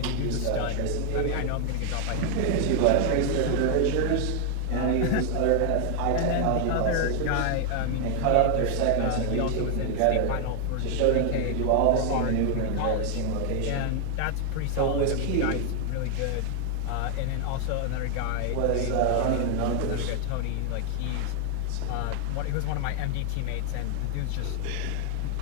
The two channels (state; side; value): different; both; correlation 0.00